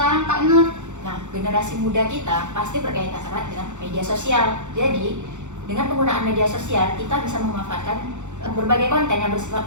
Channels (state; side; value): late; left; 0.84 ms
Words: Kak Nur? Nah, generasi muda kita pasti berkaitan erat dengan media sosial. Jadi, dengan penggunaan media sosial, kita bisa memanfaatkan berbagai konten yang bersifat